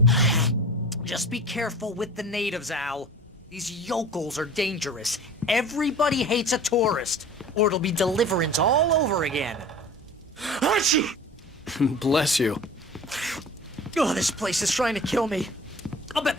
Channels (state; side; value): normal; both; correlation 0.40